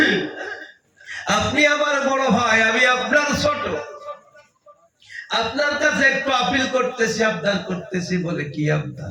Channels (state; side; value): identical; both; correlation 1.00